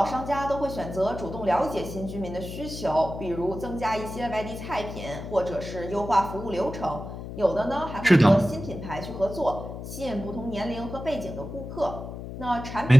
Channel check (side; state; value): left; noise; hum, 9 dB below the sound